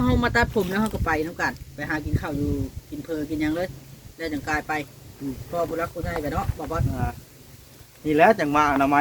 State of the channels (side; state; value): both; identical; correlation 1.00